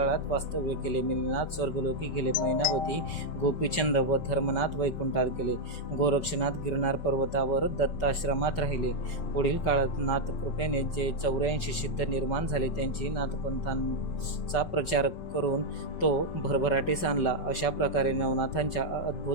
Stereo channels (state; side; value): late; right; 5.3 ms